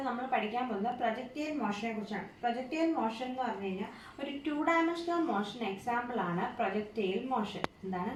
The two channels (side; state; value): both; identical; correlation 1.00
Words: നമ്മൾ പഠിക്കാൻ പോകുന്നത് പ്രൊജക്റ്റൈൽ മോഷനെ കുറിച്ചാണ്. പ്രൊജക്റ്റൈൽ മോഷൻ എന്ന് പറഞ്ഞു കഴിഞ്ഞാൽ ഒരു 2 ഡയമെൻഷണൽ മോഷൻ എക്സാമ്പിൾ ആണ് പ്രൊജക്റ്റൈൽ മോഷൻ. എന്താണ്